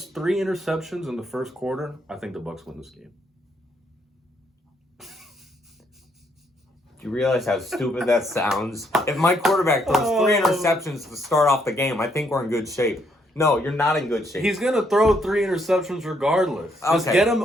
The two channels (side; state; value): both; normal; correlation 0.72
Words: 3 interceptions in the first quarter, I think the Bucs win this game. Do you realize how stupid that sounds? If my quarterback throws 3 interceptions to start off the game, I think we're in good shape. No, you're not in good shape. He's going to throw 3 interceptions regardless. Just get him